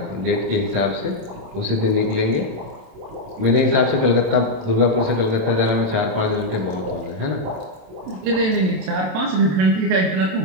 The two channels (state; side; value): late; left; 27 ms